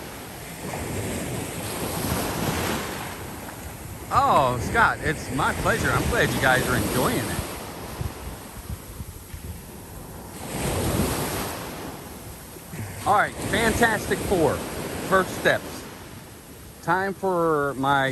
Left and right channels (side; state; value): both; identical; correlation 1.00